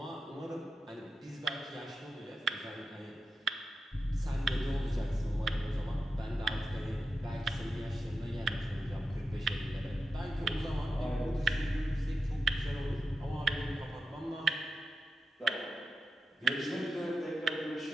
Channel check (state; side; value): normal; both; correlation 0.90